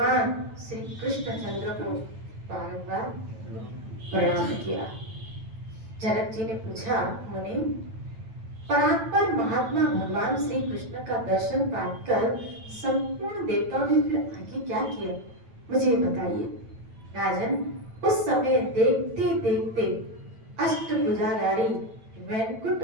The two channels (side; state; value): left; late; 9.1 ms